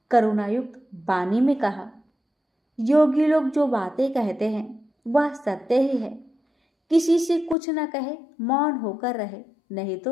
करुणायुक्त वाणी में कहा, योगी लोग जो बातें कहते हैं वह सत्य ही है। किसी से कुछ न कहे, मौन होकर रहे, नहीं तो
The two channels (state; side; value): drops out; right; at 7.6 s